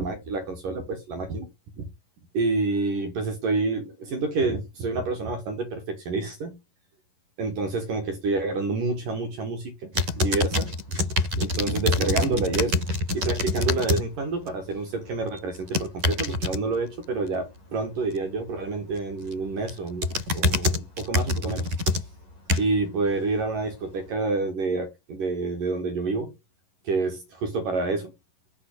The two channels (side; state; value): left; late; 11 ms